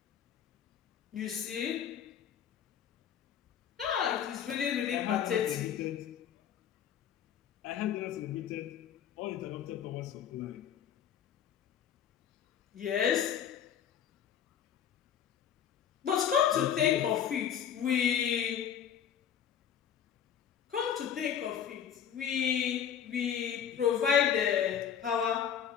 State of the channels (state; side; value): quieter; right; 8.9 dB